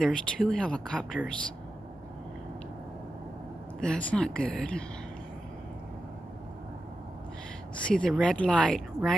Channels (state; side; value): normal; both; correlation 0.91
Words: 2 helicopters. That's not good. See the red light